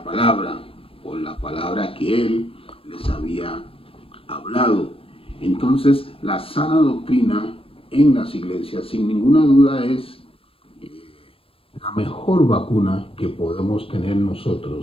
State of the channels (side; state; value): right; late; 0.27 ms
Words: por la palabra que Él les había hablado. Entonces, la sana doctrina en las iglesias, sin ninguna duda, es la mejor vacuna que podemos tener